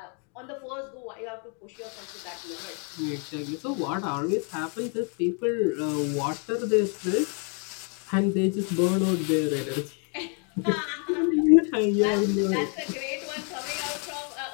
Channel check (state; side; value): quieter; right; 39.6 dB